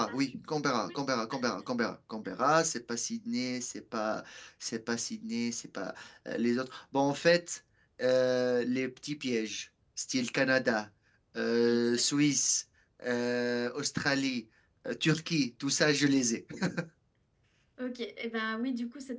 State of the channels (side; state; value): both; identical; correlation 1.00